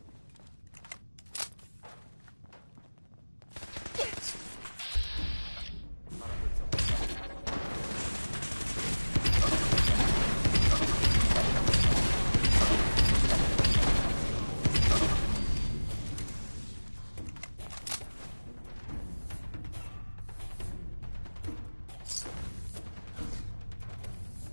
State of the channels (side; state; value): both; inverted; correlation -1.00